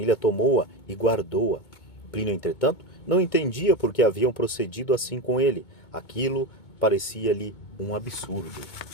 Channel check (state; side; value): late; right; 2.2 ms